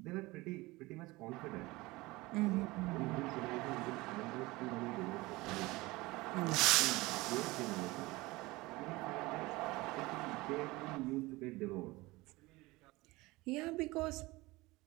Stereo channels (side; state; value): left; quieter; 21.4 dB